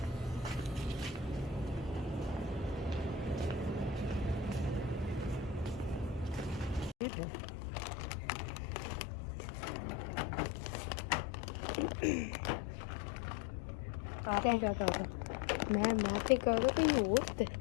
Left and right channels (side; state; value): right; drops out; at 7.0 s